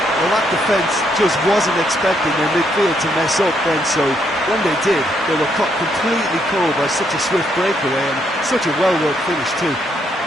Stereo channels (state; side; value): normal; both; correlation 0.74